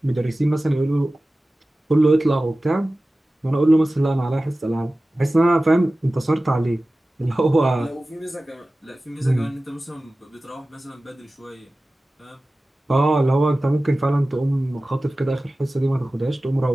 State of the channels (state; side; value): normal; both; correlation 0.96